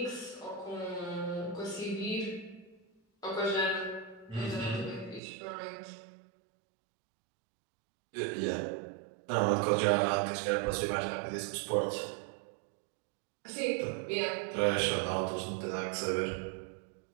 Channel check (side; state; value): left; drops out; at 5.2 s